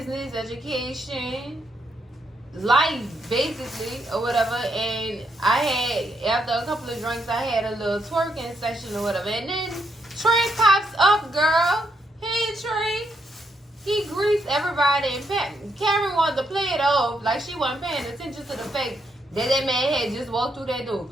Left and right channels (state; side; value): normal; both; correlation 0.78